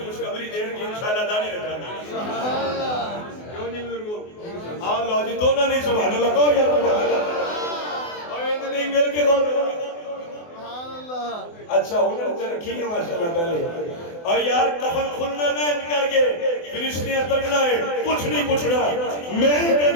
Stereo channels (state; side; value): late; right; 24 ms